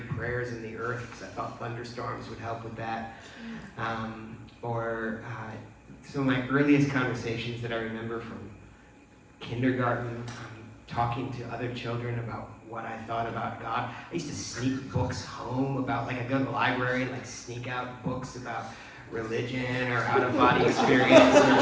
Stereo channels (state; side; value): identical; both; correlation 1.00